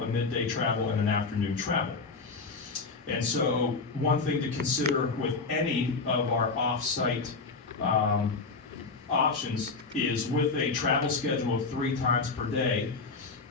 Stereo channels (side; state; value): right; quieter; 4.2 dB